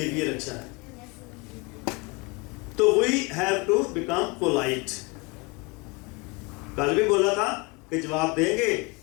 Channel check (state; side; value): quieter; right; 27.4 dB